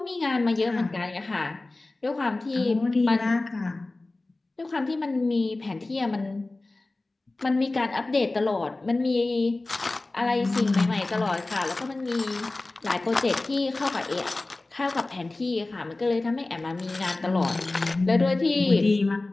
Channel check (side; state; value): right; quieter; 3.1 dB